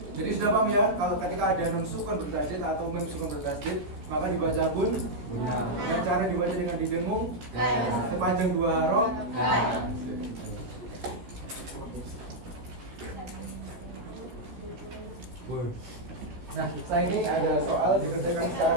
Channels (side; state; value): left; late; 14 ms